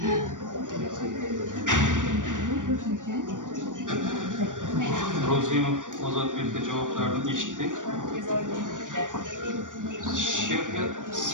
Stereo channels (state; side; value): late; left; 0.87 ms